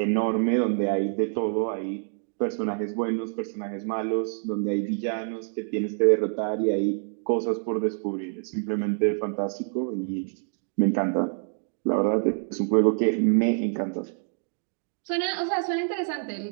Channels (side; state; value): left; silent; 60 dB below the other